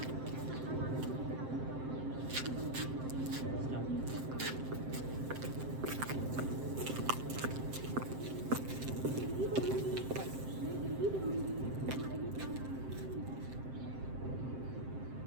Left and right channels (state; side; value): late; left; 7.6 ms